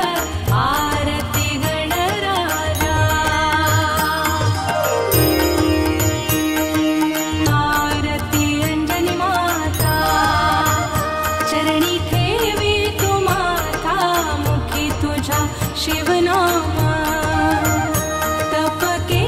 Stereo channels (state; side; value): identical; both; correlation 1.00